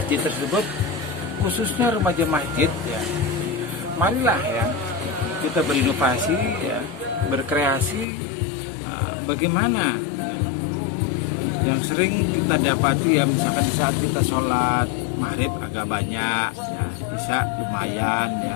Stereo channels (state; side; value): drops out; right; at 8.1 s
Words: tersebut, khususnya remaja masjid, ya, marilah ya kita berinovasi, ya, berkreasi. Bagaimana yang sering kita dapati, ya, misalkan di saat kita sholat maghrib agak banyak, ya, isya lumayan,